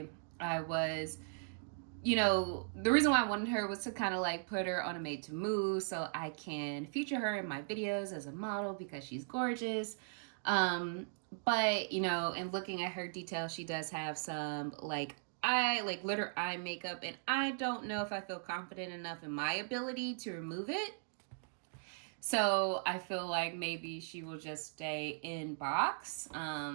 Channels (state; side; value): silent; left; digital silence